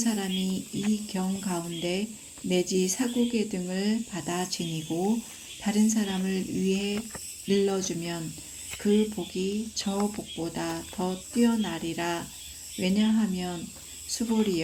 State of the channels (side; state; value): both; identical; correlation 1.00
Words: 이 경 가운데 내지 사국의 등을 받아 지니고 다른 사람을 위해 일러주면 그 복이 저 복보다 더 뛰어나리라. 왜냐하면